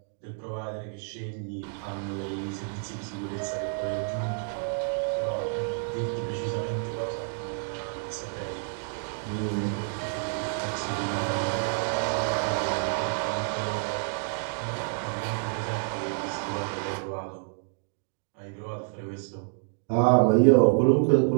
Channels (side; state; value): left; silent; 59 dB below the other